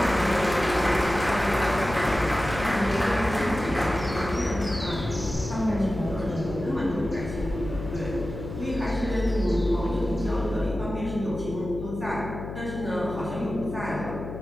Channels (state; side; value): noise; left; hum, 8 dB below the sound